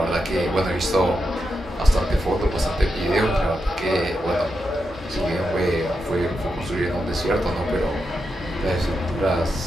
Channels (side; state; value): both; normal; correlation 0.86